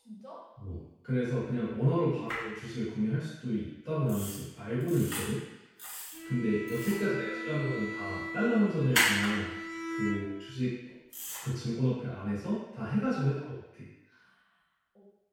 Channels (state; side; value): identical; both; correlation 1.00